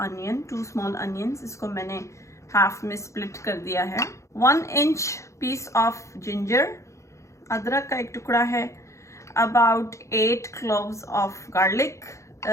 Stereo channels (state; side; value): late; right; 0.14 ms